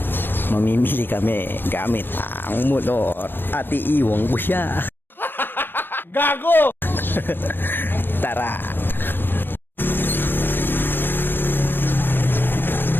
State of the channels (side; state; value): right; late; 0.098 ms